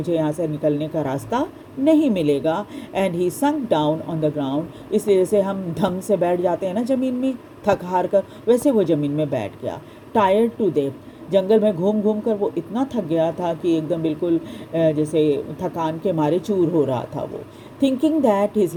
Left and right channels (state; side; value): identical; both; correlation 1.00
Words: यहाँ से निकलने का रास्ता नहीं मिलेगा। And he sunk down on the ground, इसलिए जैसे हम धम से बैठ जाते हैं ना ज़मीन में थक हार कर, वैसे वो ज़मीन में बैठ गया। टायर्ड टू डेथ, जंगल में घूम घूम कर वो इतना थक गया था कि एकदम बिल्कुल जैसे थकान के मारे चूर हो रहा था वो। Thinking that his